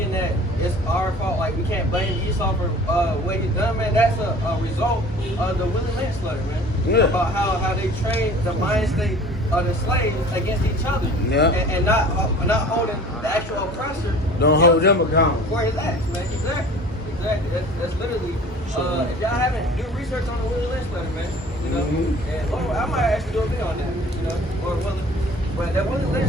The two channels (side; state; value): both; normal; correlation 0.45